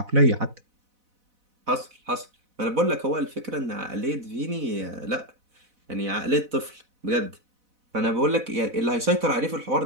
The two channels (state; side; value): late; left; 4.0 ms